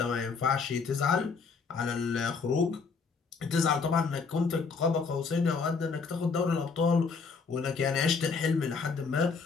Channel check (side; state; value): right; quieter; 5.0 dB